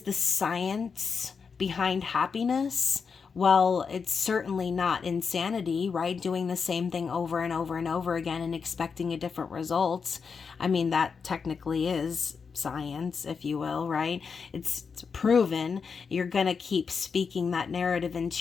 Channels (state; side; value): quieter; right; 5.7 dB